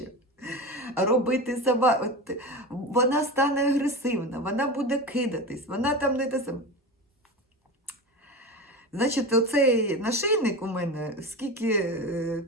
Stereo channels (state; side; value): normal; both; correlation 0.25